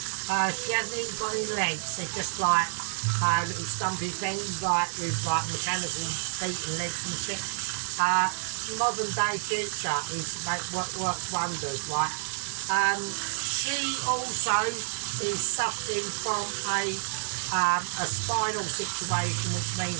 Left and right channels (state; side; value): silent; left; 58 dB below the other